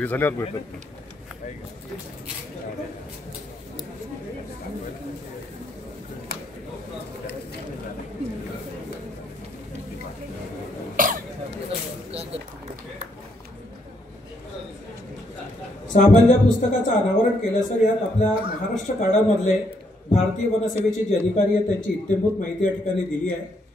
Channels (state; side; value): normal; both; correlation 0.74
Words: झाल्यावर भेटतात. सामान्य पुस्तकाचं अनावरण केलं सर. यात आपल्या महाराष्ट्र कार्डामधले भारतीय वनसेवेचे जे अधिकारी आहेत त्यांची इत्थंभूत माहिती या ठिकाणी दिली आहे.